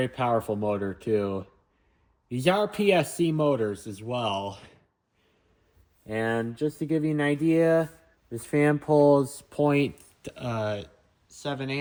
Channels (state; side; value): identical; both; correlation 1.00